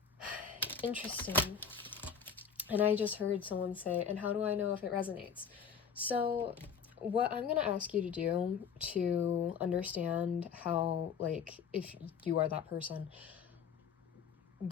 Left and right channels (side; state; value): right; quieter; 7.0 dB